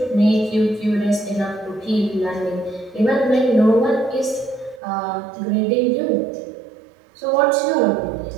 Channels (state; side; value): drops out; left; at 4.8 s